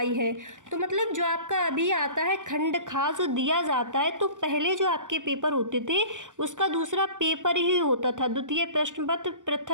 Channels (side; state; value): left; late; 0.87 ms